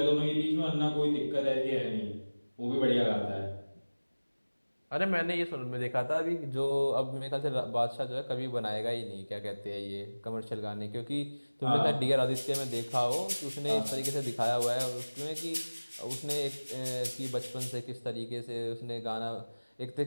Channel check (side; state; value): both; inverted; correlation -1.00